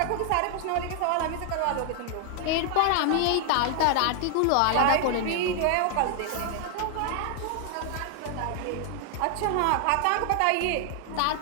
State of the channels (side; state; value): both; different; correlation 0.00